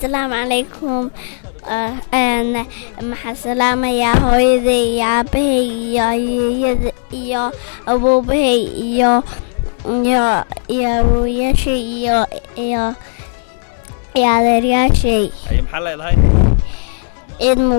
عليكم أنا مع سلامة يا هويدي يا أبي يا أبو بي يا شيء يا شيء. أي محل هاي. عيد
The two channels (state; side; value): silent; right; digital silence